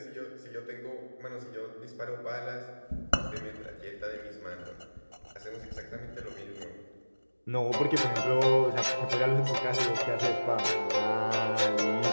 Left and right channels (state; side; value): inverted; both; correlation -1.00